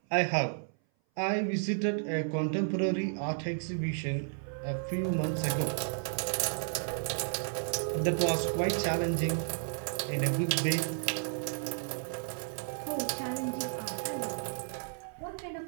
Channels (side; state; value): left; silent; 56 dB below the other